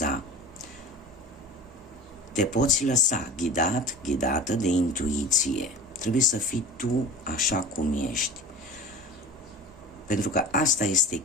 Te poți lăsa ghidată de intuiție. Trebuie să fii tu așa cum ești. Pentru că asta este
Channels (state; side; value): normal; both; correlation 0.35